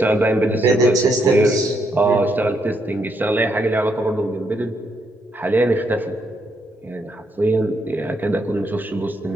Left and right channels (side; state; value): both; normal; correlation 0.76